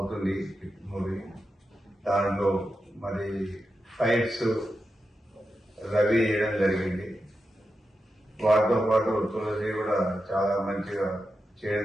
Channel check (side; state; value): both; normal; correlation 0.89